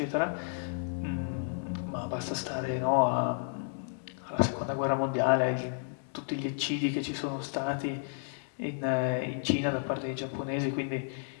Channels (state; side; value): silent; right; 56 dB below the other